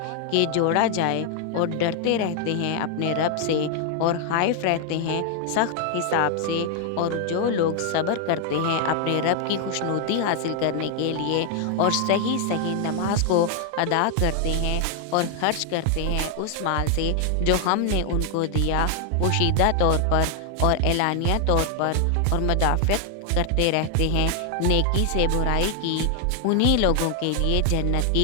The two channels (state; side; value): different; both; correlation 0.00